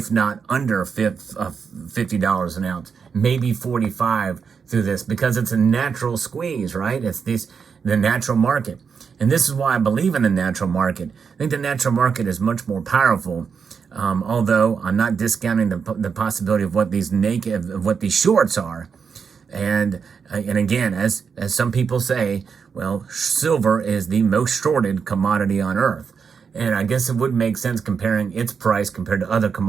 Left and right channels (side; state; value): left; quieter; 6.1 dB